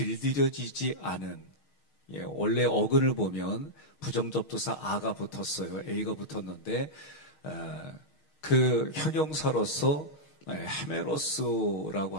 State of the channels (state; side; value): late; right; 6.4 ms